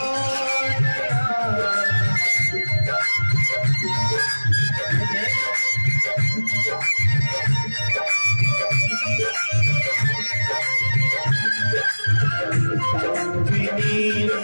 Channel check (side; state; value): both; inverted; correlation -1.00